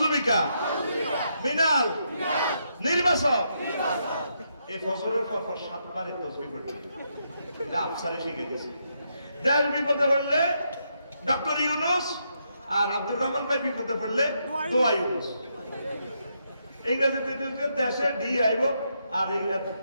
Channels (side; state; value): both; inverted; correlation -0.79